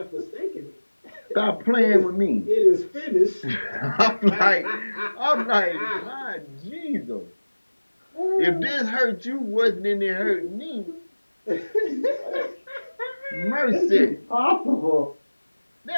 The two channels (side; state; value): both; inverted; correlation -1.00